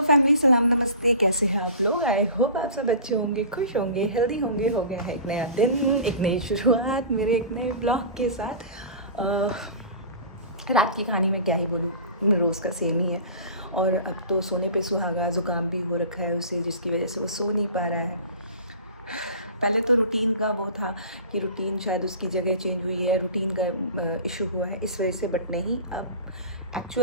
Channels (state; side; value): inverted; both; correlation -0.38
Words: family, सलाम नमस्ते। कैसे हैं आप लोग? आई होप आप सब अच्छे होंगे, खुश होंगे, हेल्दी होंगे। हो गया है एक नया दिन, एक नई शुरुआत मेरे एक नए ब्लॉग के साथ। रात की कहानी में क्या ही बोलूँ, रोज़ का सेम ही है। और अब तो सोने पे सुहागा, ज़ुकाम भी हो रखा है उसे, जिसकी वजह से वो सो नहीं पा रहा है। पहले तो रूटीन का वो था कि रूटीन शायद उसकी जगह चेंज हुई है, रूटीन का इशू हुआ है इस वजह से, बट नहीं, अब